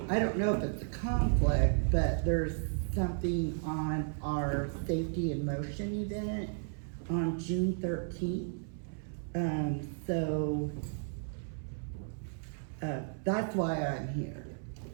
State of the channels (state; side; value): silent; left; 55 dB below the other